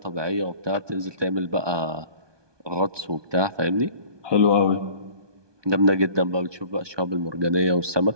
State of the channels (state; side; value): late; left; 1.2 ms